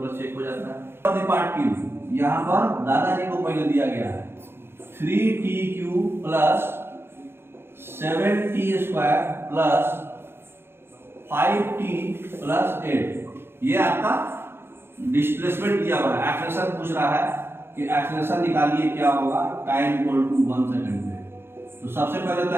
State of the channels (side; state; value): left; late; 0.11 ms